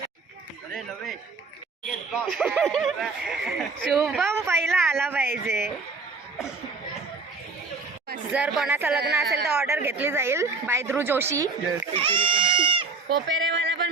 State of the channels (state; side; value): quieter; left; 4.0 dB